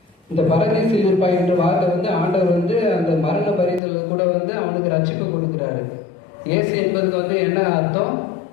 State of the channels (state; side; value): drops out; right; at 3.8 s